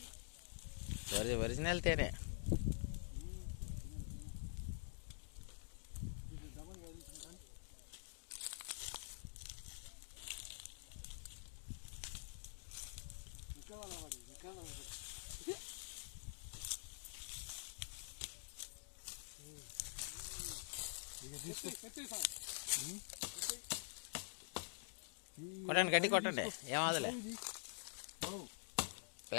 ఒరిజినల్ తేనే. కొట్టండి, గడ్డి కొట్టండి, ఏమవదులే.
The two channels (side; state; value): right; silent; digital silence